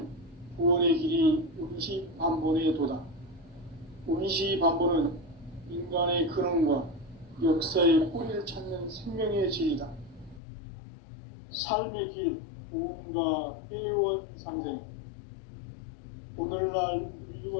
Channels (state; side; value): drops out; right; at 10.4 s